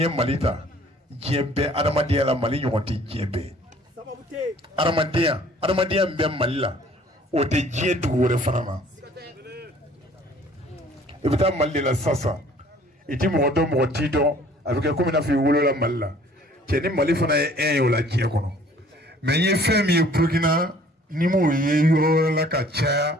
Malita. Djembe Adamadia la Mali nyoti djembe. Adamadia mbe Mali la. O te dje duure fanama. Ibita Mali la sasa. Iti modo motido avec comme na fi wolo la Mali la. Tieni Mali fana e o la dje kono. Mais ye femi e Burkina ni mo ye yo la ka cha.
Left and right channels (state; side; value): normal; both; correlation 0.54